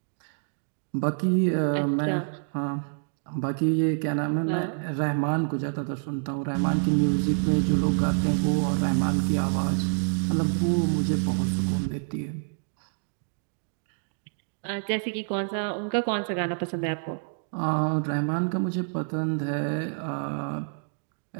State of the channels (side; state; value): left; silent; digital silence